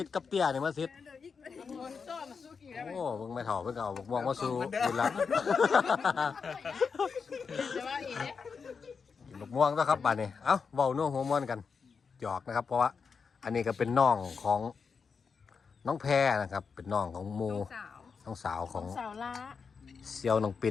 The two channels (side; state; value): right; quieter; 5.6 dB